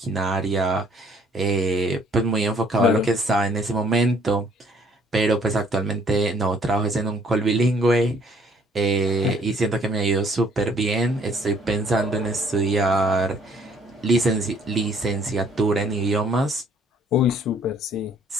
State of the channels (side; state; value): both; normal; correlation 0.62